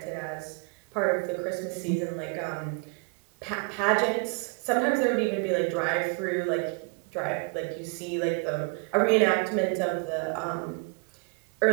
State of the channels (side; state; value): left; quieter; 36.1 dB